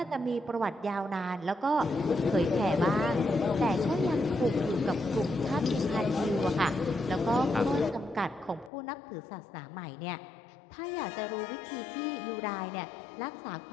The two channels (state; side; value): drops out; right; at 8.7 s